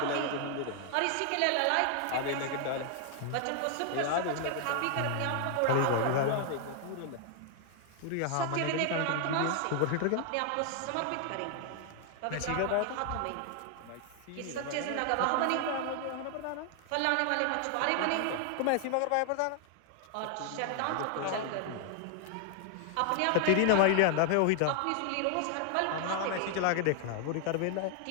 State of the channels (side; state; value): both; different; correlation 0.00